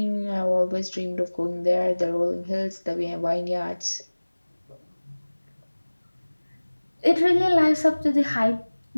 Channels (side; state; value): both; inverted; correlation -1.00